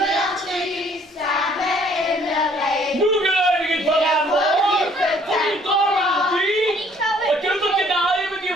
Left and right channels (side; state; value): both; normal; correlation 0.60